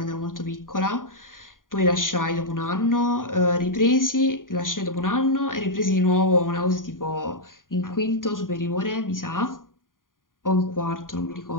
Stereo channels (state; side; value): late; right; 0.90 ms